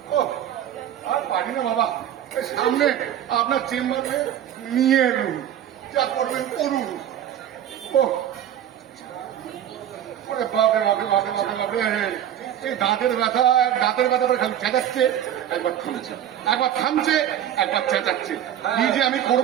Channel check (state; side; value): quieter; left; 10.7 dB